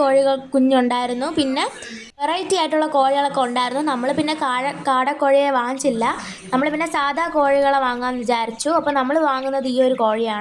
കുഞ്ഞുണ്ടായിരുന്നു. പിന്നെ വെറൈറ്റി ആയിട്ടുള്ള കോഴികളൊക്കെ ഉണ്ടായിരുന്നു. നമ്മൾ പിന്നെ കാടക്കോഴിയെ വാങ്ങിച്ചില്ല. നമ്മൾ പിന്നെ സാധാ കോഴികളെ വാങ്ങാമെന്ന് വിചാരിച്ചു. അപ്പോൾ നമ്മൾ വാങ്ങുന്നത് ഈ ഒരു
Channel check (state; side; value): identical; both; correlation 1.00